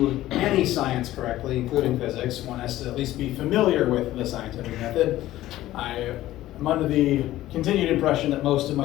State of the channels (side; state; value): right; quieter; 15.0 dB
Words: any science correctly, including physics, one has to at least be familiar with the scientific method. I'm under the continued impression that most of